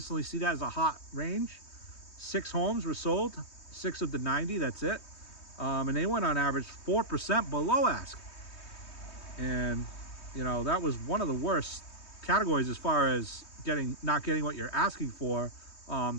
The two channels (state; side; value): late; right; 3.2 ms